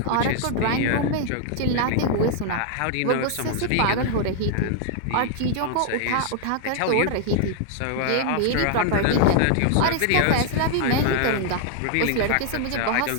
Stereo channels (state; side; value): different; both; correlation 0.00